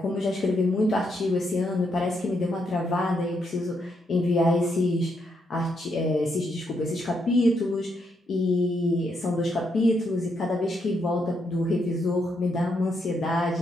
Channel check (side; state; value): both; normal; correlation 0.78